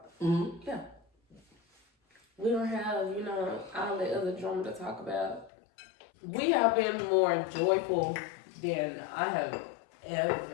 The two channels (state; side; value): drops out; right; at 5.5 s